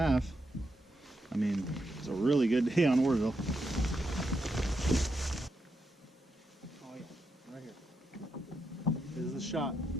I mean, it's a really good day on Oroville. Right here. This is the shot.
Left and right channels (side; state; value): both; normal; correlation 0.83